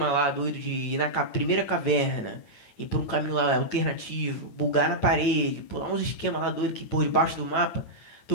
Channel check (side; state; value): right; late; 8.9 ms